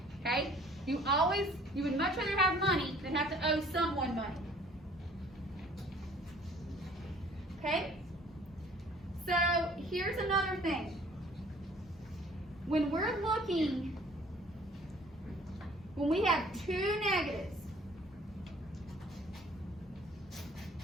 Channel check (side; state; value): both; normal; correlation 0.54